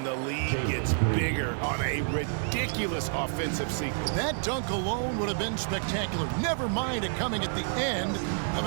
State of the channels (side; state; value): left; silent; digital silence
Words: the lead gets bigger on a ridiculous offensive sequence. That dunk alone would have been spectacular. Never mind it coming at the end of